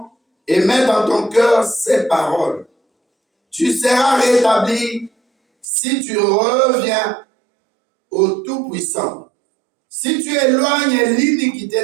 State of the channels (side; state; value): left; drops out; at 5.7 s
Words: et mets dans ton cœur ses paroles. Tu seras rétabli si tu reviens au Tout-Puissant. Si tu éloignes